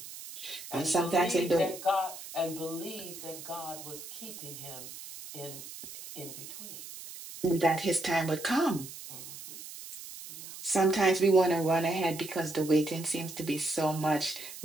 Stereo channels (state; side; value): noise; right; hiss, 12 dB below the sound